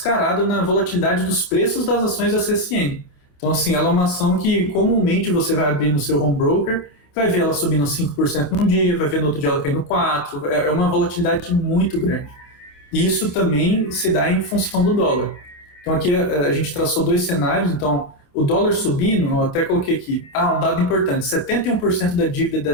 na volatilidade dos preços das ações da CSN. Então, assim, ela é uma ação que comumente você vai abrir no seu home broker, vai ver ela subindo 5% num dia, vai ver no outro dia ela caindo 4%, é uma volatilidade muito grande. E isso também se dá em função do dólar. Então, aqui a gente traçou dois cenários, então... O dólar subindo, eu até coloquei aqui, um dado importante, 71% da dívida da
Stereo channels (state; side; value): late; right; 28 ms